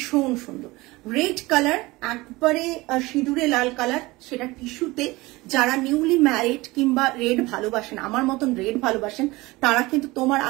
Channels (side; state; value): left; quieter; 21.2 dB